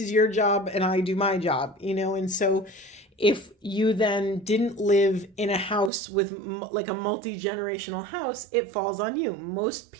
your job and I do my job, and so if you then didn't live in a house with like a multi-generational house, it falls on you. Most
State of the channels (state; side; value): drops out; left; at 5.9 s